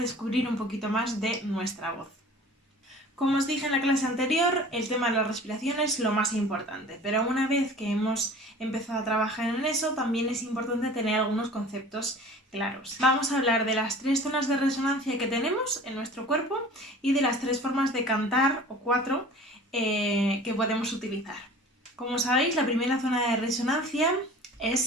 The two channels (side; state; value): both; normal; correlation 0.44